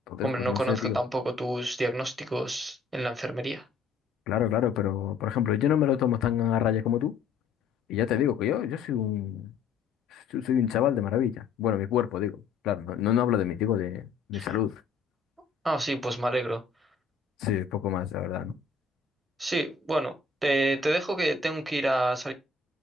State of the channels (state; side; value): quieter; right; 4.9 dB